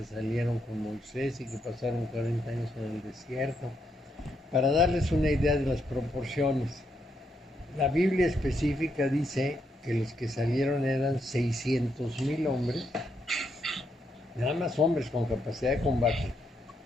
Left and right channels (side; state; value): both; normal; correlation 0.78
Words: salieron con Moisés y que pasaron 40 años en el desierto. Para darles una idea de las proporciones, la Biblia específica dice que los que salieron eran 600,000 hombres, nada más hombres con capacidad de combate,